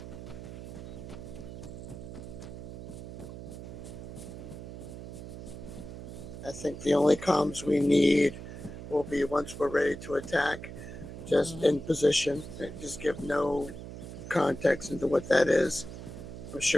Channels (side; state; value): right; noise; hum, 11 dB below the sound